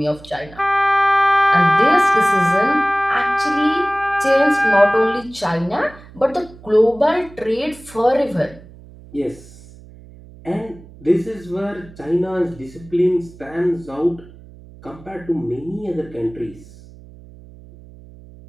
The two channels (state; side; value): noise; right; hum, 21 dB below the sound